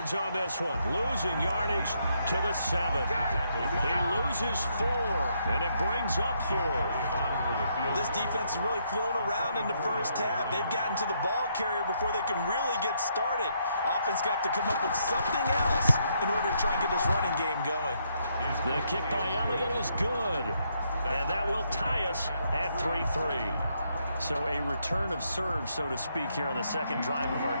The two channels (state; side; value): inverted; both; correlation -0.75